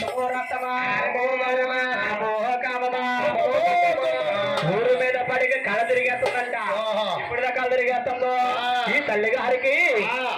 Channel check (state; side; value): identical; both; correlation 1.00